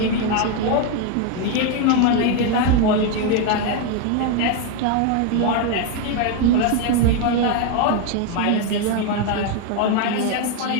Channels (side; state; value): both; different; correlation 0.01